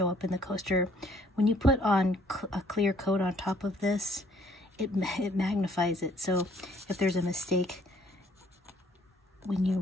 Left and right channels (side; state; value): both; normal; correlation 0.62